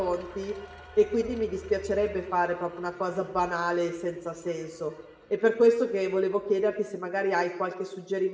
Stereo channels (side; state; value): both; identical; correlation 1.00